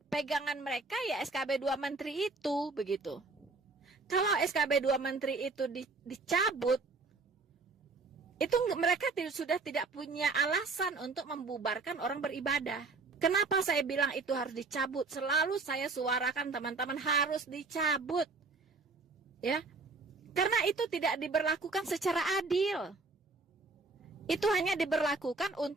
Pegangan mereka ya SKB 2 Menteri itu, begitu. Kalau SKB 2 Menteri itu dicabut, itu mereka sudah tidak punya alasan untuk membubarkan orang beribadah. Kenapa saya bilang itu harus dicabut? Selalu saya suarakan teman-teman harus dicabut. Ya. Karena itu tidak diberlakukan secara adil. Itu hanya diberlakukan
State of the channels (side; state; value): left; quieter; 3.9 dB